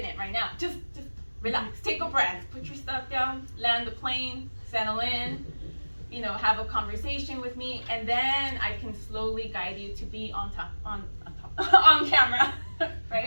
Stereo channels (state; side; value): inverted; both; correlation -1.00